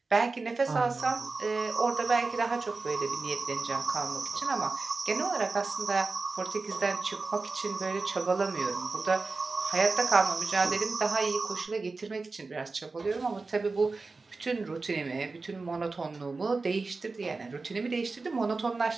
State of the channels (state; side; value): quieter; left; 3.9 dB